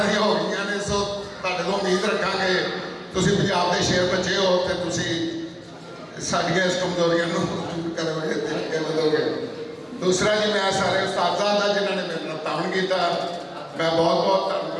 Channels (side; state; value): both; identical; correlation 1.00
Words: ਦੀਆਂ ਹੋ ਗਈਆਂ ਨੇ। ਸੋ ਤੁਹਾਡੇ ਤੋਂ ਉਮੀਦ ਰੱਖਾਂਗੇ, ਤੁਸੀਂ ਪੰਜਾਬ ਦੇ ਸ਼ੇਰ ਬੱਚੇ ਹੋ ਤੇ ਤੁਸੀਂ ਸਾਡੀਆਂ ਇਸ ਕਮਜ਼ੋਰੀਆਂ ਨੂੰ ਦੂਰ ਕਰੋਗੇ ਤੇ ਅੱਗੇ ਵਧੋਗੇ। ਦੂਸਰਾ ਜੀ, ਮੈਂ ਸਾਰੇ ਉਸਤਾਦਾਂ ਦਾ ਜਿਨ੍ਹਾਂ ਨੇ ਮੇਰੇ ਨਾਲ ਤਾਣ ਕੀਤਾ, ਮੈਂ ਬਹੁਤ ਬਹੁਤ